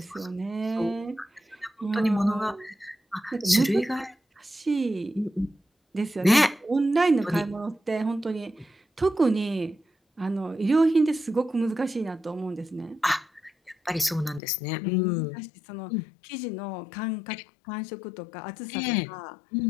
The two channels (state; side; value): drops out; right; at 14.4 s